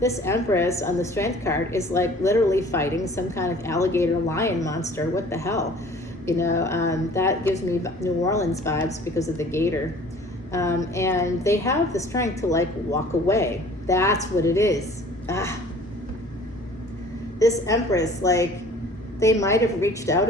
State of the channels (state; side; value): normal; both; correlation 0.49